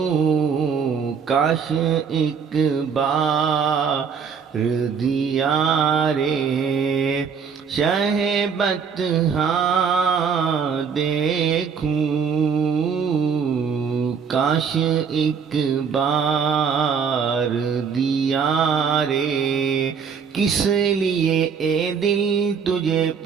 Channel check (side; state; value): left; quieter; 6.5 dB